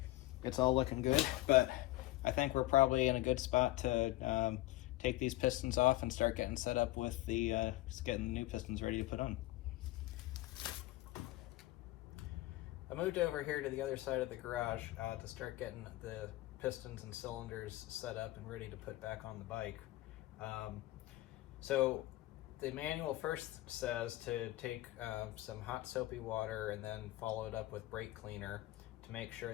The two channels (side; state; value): right; quieter; 17.8 dB